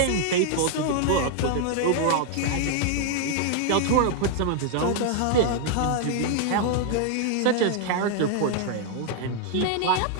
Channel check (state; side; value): different; both; correlation 0.00